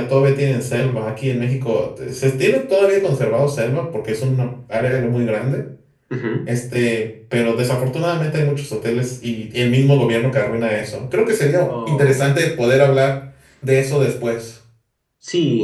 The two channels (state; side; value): identical; both; correlation 1.00